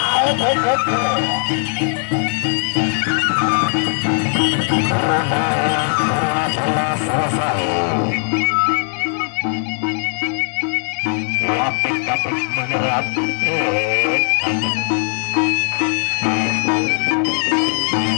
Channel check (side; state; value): right; silent; digital silence